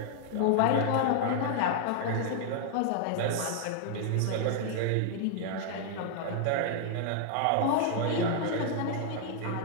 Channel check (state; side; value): different; both; correlation 0.00